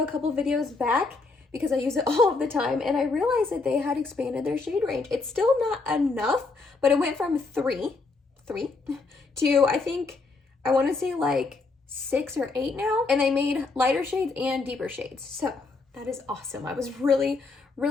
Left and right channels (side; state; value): right; quieter; 3.9 dB